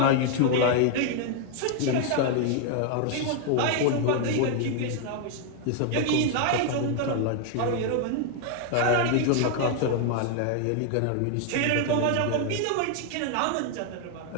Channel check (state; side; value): different; both; correlation 0.00